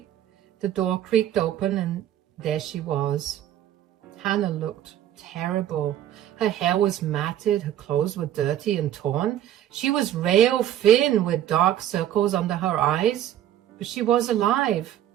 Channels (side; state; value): left; quieter; 11.6 dB